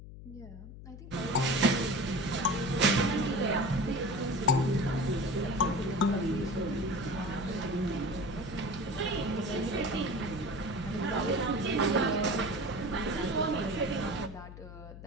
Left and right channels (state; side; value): noise; left; hum, 14 dB below the sound